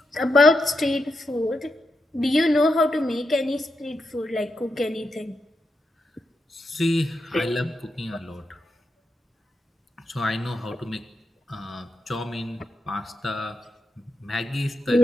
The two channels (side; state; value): both; normal; correlation 0.85